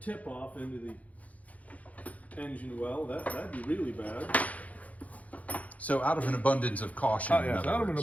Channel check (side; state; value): right; late; 0.070 ms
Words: off into the engine well, that'd be really bad. So out of an abundance of caution. Oh, yeah, out of an